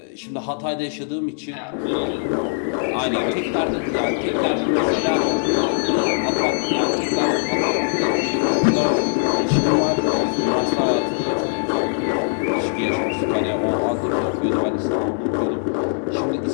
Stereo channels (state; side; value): silent; right; digital silence